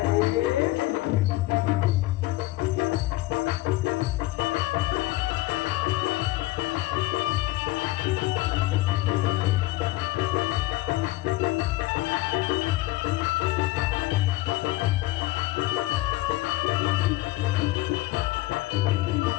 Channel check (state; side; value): quieter; right; 18.5 dB